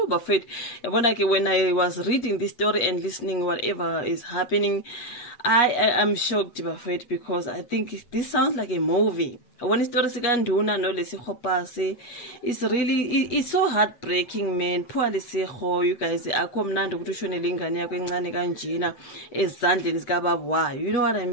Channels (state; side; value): late; right; 8.4 ms